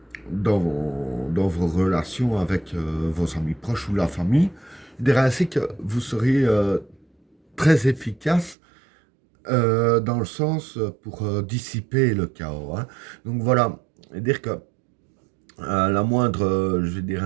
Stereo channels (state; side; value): drops out; left; at 8.6 s